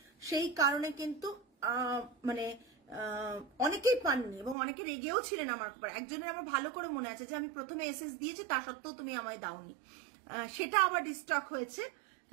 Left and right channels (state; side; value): drops out; left; at 4.5 s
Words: সেই কারণে কিন্তু মানে অনেকেই পাননি এবং অনেকে রেগেও ছিলেন আমার উপর। একজনের আমার ভালো করে মনে আছে যে আমি প্রথমে এসএস দিয়েছি তা সত্ত্বেও তুমি আমায় দাওনি, সেটা আবার ডিস্টক হয়েছে।